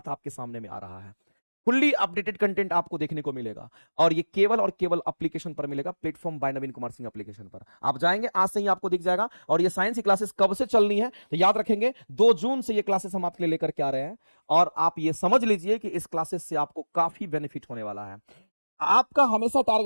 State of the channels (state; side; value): inverted; both; correlation -1.00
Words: आपके सामने में आ रहा है। फुल्ली अपडेटेड कंटेंट आपको देखने को मिलेगा, और ये केवल और केवल एप्लीकेशन पर मिलेगा, प्लेटफॉर्म बाय नवीन कुमार सिंह एप्लीकेशन पर आप जाएंगे, आज से ही आपको दिख जाएगा। और ये साइंस की क्लासेस कब से चलनी है तो याद रखेंगे, 2 जून से ये क्लासेस हम आपके लिए लेकर के आ रहे हैं। और आप ये समझ लीजिए कि इस क्लासेस से आपको काफी बेनिफिट होने वाला है। आपका हमेशा